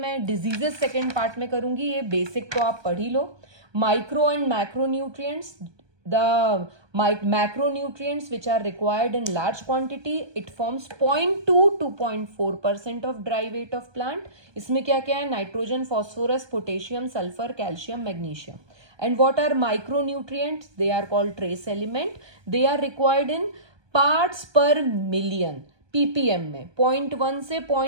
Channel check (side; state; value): left; late; 1.2 ms